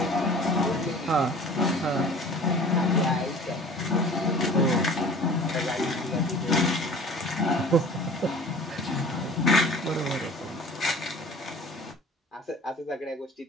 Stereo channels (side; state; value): both; normal; correlation 0.45